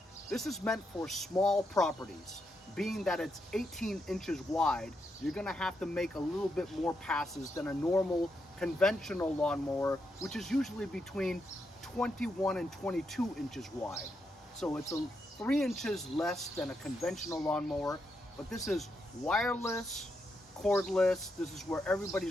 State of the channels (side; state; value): both; normal; correlation 0.82